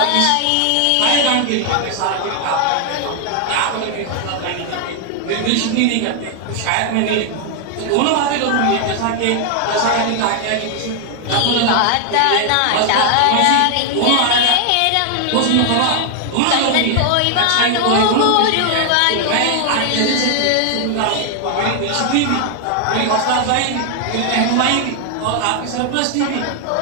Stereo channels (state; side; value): different; both; correlation 0.00